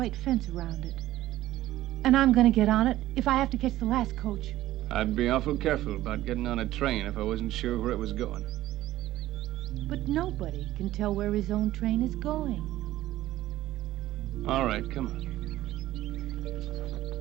fence around it. And I'm going to get on it if I have to catch the last coach. I'd be awful careful about getting on a train if I wasn't sure where it was going. But nobody can tell where his own train is going. All right, come on.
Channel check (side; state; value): left; quieter; 14.9 dB